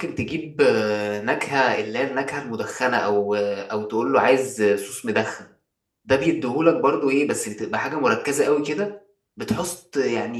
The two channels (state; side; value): identical; both; correlation 1.00